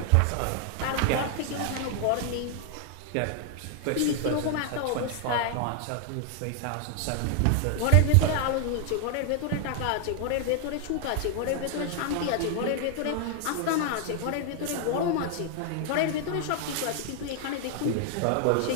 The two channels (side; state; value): both; different; correlation 0.00